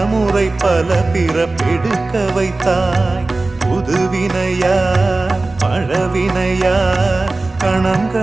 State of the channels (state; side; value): quieter; left; 3.2 dB